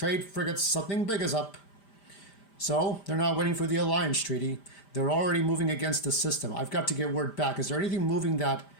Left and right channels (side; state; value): right; late; 5.0 ms